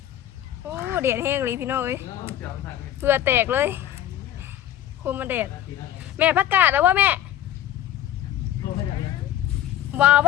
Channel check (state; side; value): quieter; right; 11.9 dB